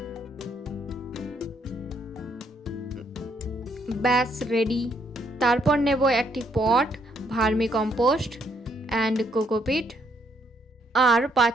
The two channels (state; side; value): normal; both; correlation 0.71